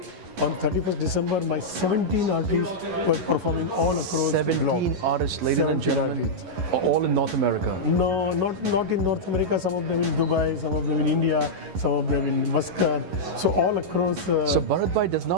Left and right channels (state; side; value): late; left; 11 ms